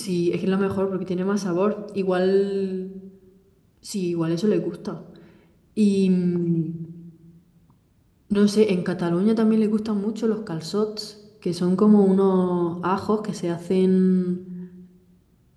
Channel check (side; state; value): both; identical; correlation 1.00